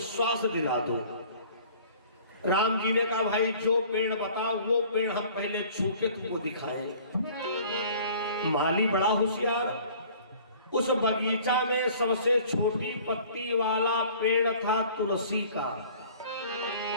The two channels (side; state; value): both; inverted; correlation -0.50